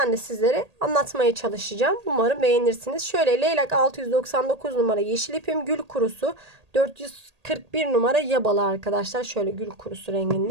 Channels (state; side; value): late; left; 1.8 ms